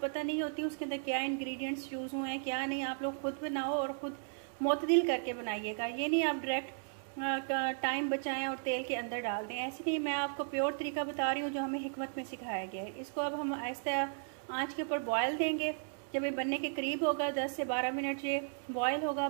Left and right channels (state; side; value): silent; left; digital silence